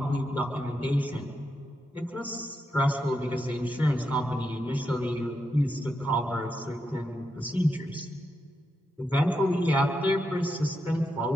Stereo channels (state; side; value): normal; both; correlation 0.85